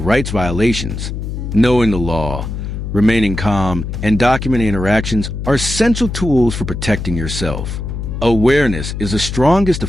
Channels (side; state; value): left; noise; hum, 5 dB below the sound